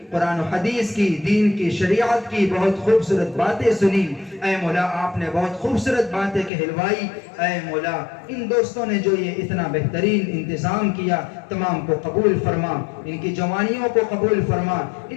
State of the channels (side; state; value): right; drops out; at 6.5 s